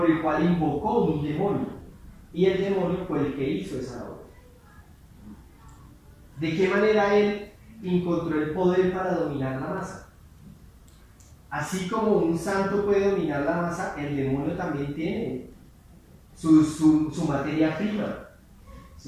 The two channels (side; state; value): both; identical; correlation 1.00